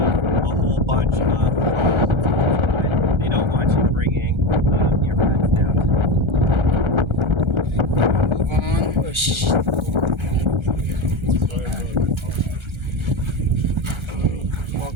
a whole bunch of problems. They don't want you bringing your pets down to them. Move on. Oh,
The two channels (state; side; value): late; left; 1.3 ms